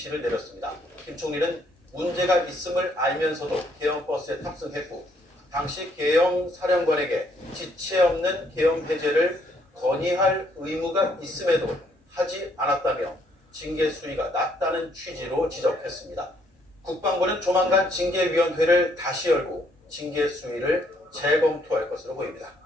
내렸습니다. 김 총리는 문제가 있음을 알면서도 계엄 버스에 탑승했고 당시 계엄 사령관에게 지체 없는 계엄 해제를 건의할 의무가 있음에도 하지 않았다며 징계 수위가 낮다는 취지로 지적했습니다. 국방부는 조만간 징계위원회를 다시 열고 징계 수위를 재검토할 것으로 보입니다.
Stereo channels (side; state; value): both; normal; correlation 0.69